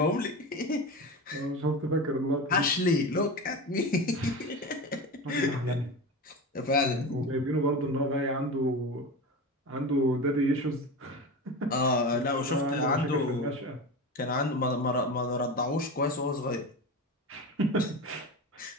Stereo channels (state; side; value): normal; both; correlation 0.26